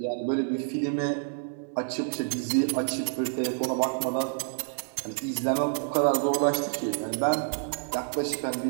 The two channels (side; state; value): left; silent; digital silence